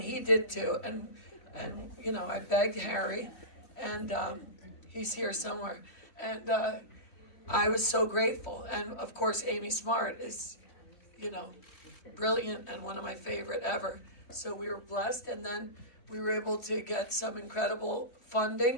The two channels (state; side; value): late; right; 3.2 ms